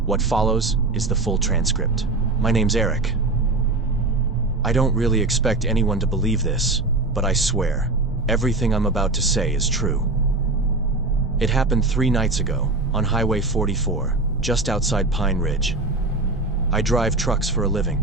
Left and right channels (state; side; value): quieter; left; 3.2 dB